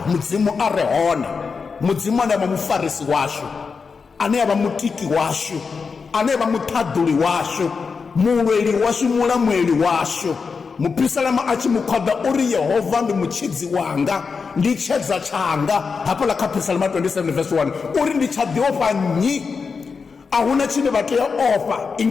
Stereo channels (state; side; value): quieter; right; 5.2 dB